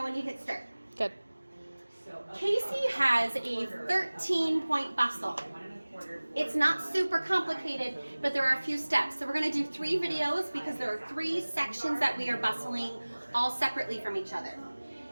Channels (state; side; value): inverted; both; correlation -1.00